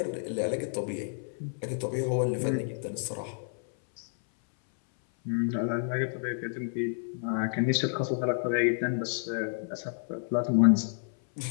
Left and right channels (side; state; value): right; silent; 58 dB below the other